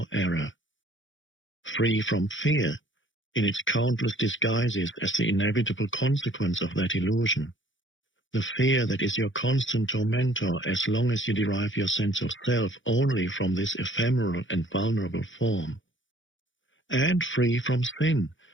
error. Free from fear, in its countless disguises as the inevitable consequence of that illusion. The fear that is your constant tormentor as long as you derive your sense of self only from this ephemeral and vulnerable form. And free from sin,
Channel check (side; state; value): right; late; 0.56 ms